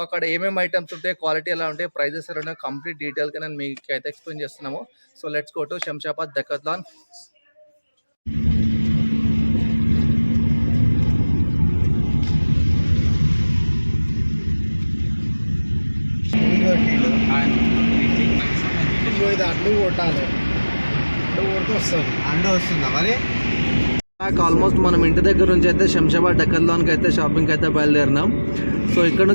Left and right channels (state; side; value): inverted; both; correlation -1.00